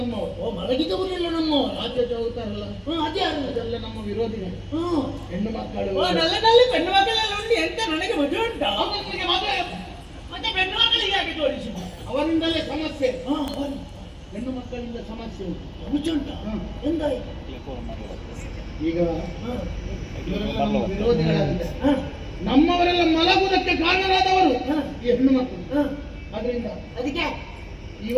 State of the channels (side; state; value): both; identical; correlation 1.00